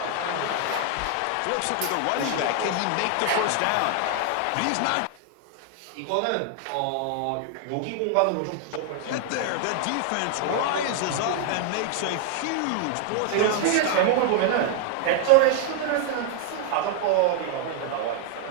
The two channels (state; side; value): different; both; correlation 0.00